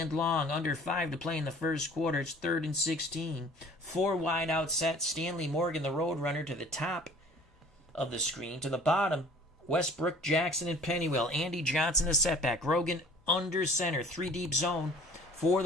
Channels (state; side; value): normal; both; correlation 0.50